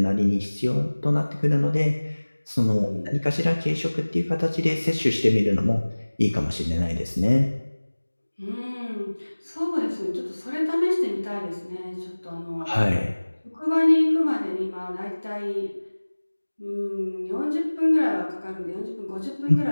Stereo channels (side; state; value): both; inverted; correlation -1.00